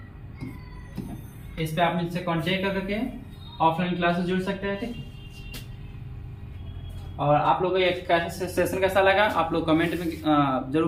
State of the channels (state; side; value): identical; both; correlation 1.00